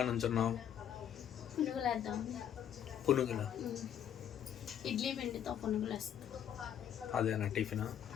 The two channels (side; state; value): right; quieter; 9.7 dB